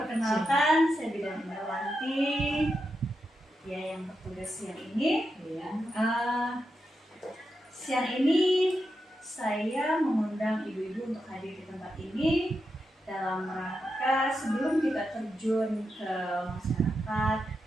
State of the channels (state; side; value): normal; both; correlation 0.87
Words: saya Bidan Indrawanti. Ya, yang bertugas siang ini. Siang ini saya mengundang ibu-ibu untuk hadir di tempat ini dalam rangka sebelum kita terjun ke masyarakat